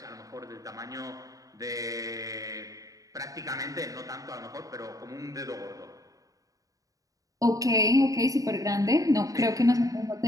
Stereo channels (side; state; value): left; late; 0.17 ms